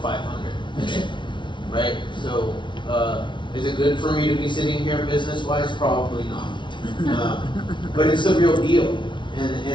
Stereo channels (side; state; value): right; late; 0.24 ms